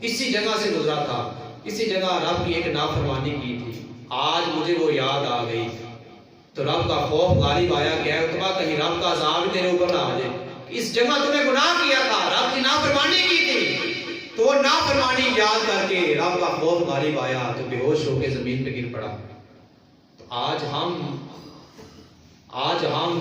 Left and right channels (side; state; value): both; identical; correlation 1.00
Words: اسی جگہ سے گزرا تھا، اسی جگہ رب کی ایک نافرمانی کی تھی، آج مجھے وہ یاد آ گئی۔ تو رب کا خوف غالب آیا کہ اے عتبہ کہیں رب کا عذاب تیرے اوپر نہ آ جائے، اس جگہ تم نے گناہ کیا تھا، رب کی نافرمانی کی تھی، تو وہ نافرمانی یاد کر کے رب کا خوف غالب آیا تو بے ہوش ہو کے زمین پہ گر پڑا۔ تو آج ہم